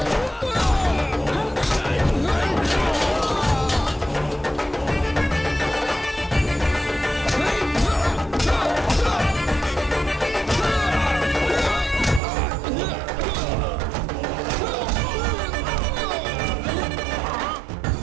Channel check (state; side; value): drops out; left; at 12.2 s